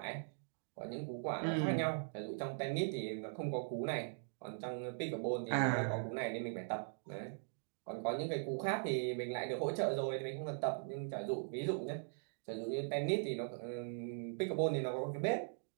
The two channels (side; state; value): left; silent; digital silence